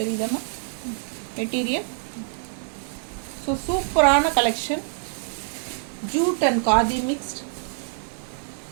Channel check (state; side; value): silent; left; digital silence